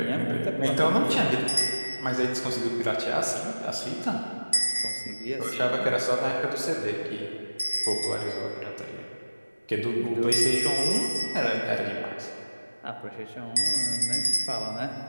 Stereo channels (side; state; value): both; inverted; correlation -1.00